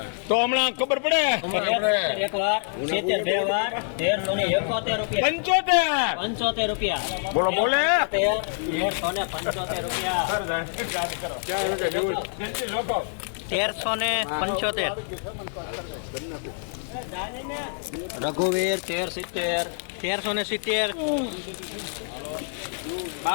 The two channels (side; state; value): right; silent; digital silence